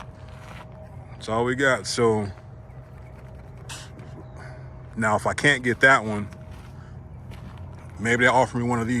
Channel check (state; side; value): identical; both; correlation 1.00